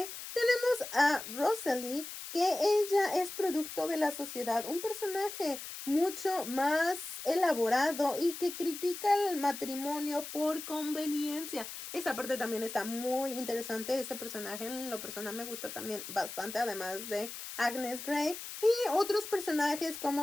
Tenemos a Rosalie, que ella es producto de la sociedad, un personaje mucho más elaborado y que critica el matrimonio por conveniencia. Esa parte también está muy interesante. Ese personaje en lo personal me gusta también bastante, además de Agnes Grey. Y otros personajes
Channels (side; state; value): left; noise; hiss, 9 dB below the sound